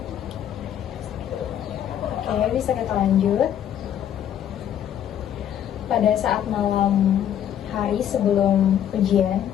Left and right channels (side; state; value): right; quieter; 10.1 dB